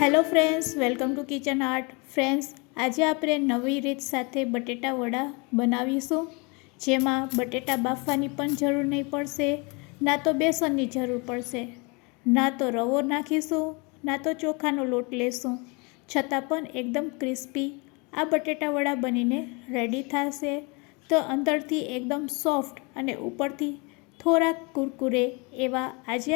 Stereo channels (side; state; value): right; quieter; 30.1 dB